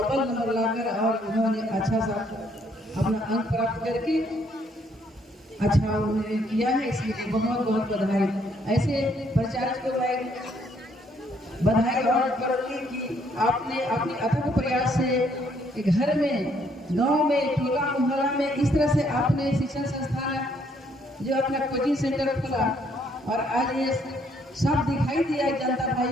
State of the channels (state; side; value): normal; both; correlation 0.68